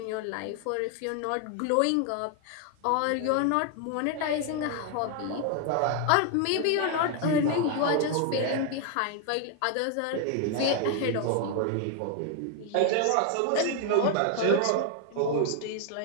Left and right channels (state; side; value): different; both; correlation 0.00